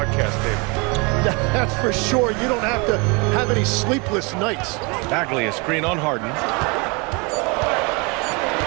table. That's for sure. You don't have to have any sleepless nights. Bagley, a screen on Harden.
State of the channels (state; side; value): quieter; left; 29.8 dB